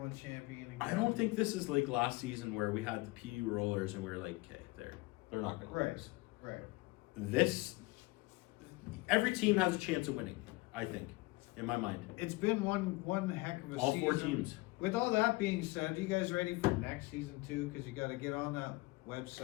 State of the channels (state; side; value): quieter; right; 22.7 dB